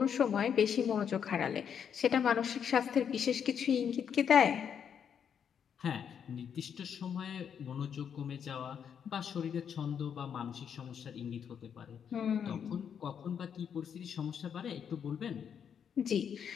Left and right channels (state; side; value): quieter; right; 7.9 dB